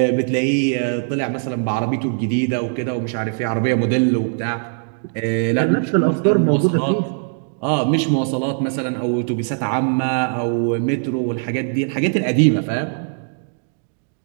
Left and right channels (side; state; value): left; silent; digital silence